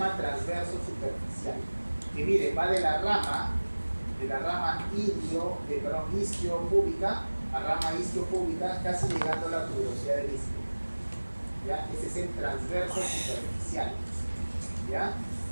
transverso superficial. Que mire, va de la rama isquiopúbica a rama isquiopúbica, casi llegando a la tuberosidad del isquio. ¿Ya? Ese es el transverso superficial. ¿Ya?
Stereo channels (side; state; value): both; inverted; correlation -1.00